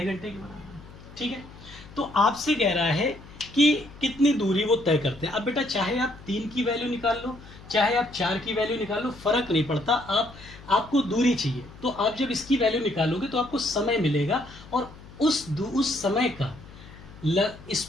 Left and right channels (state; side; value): noise; left; hum, 19 dB below the sound